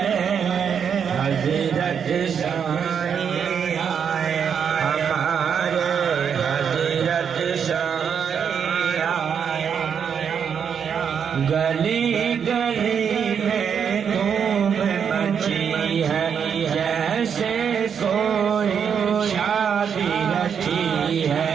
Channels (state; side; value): quieter; left; 7.4 dB